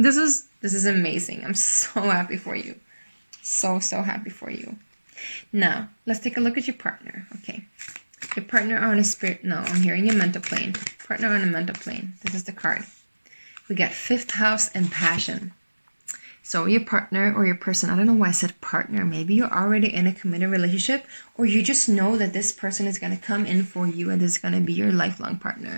is amazing. I'm so happy for you. So happy for you. Now, let's take a look at your partner. Okay. Your partner on a spirit... No, I'm hearing your mental plane. Partner on a mental plane. This is the card. We got 5th house and passion. So your partner or your person, I don't know why I said partner. Maybe you're already in a committed relationship, or you just know that this person is going to come in for you and this is going to be your lifelong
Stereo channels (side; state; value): both; inverted; correlation -1.00